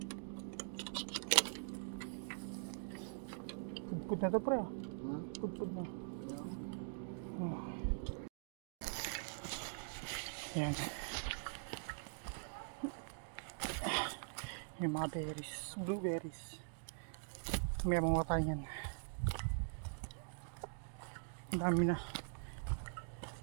Pud na to pre. Pud na. Oh. Ayan. Yung mga berries, blueberries. May mga tayo yan. Ang dami na.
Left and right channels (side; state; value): left; silent; digital silence